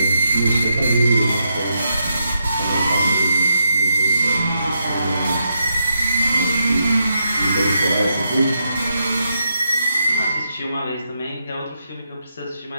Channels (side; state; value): both; inverted; correlation -0.82